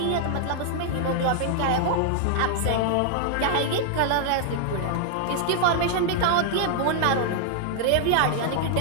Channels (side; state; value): both; different; correlation 0.00